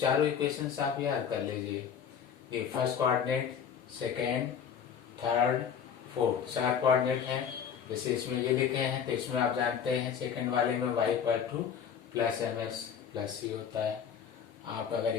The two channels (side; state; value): right; quieter; 7.7 dB